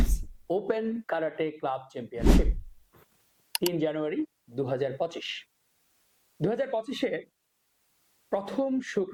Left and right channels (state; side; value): identical; both; correlation 1.00